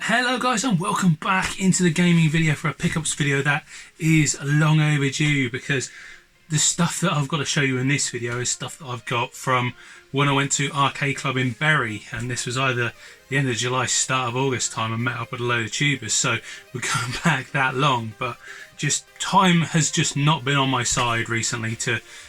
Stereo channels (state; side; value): identical; both; correlation 1.00